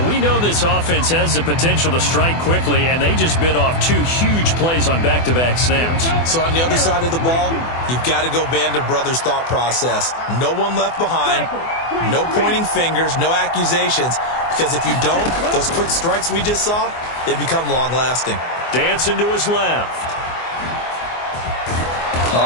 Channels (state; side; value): late; right; 24 ms